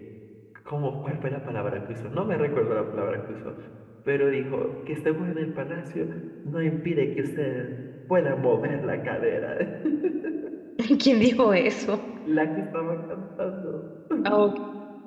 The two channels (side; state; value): both; identical; correlation 1.00